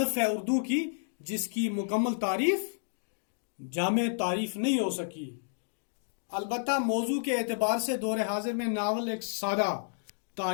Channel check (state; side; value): silent; right; digital silence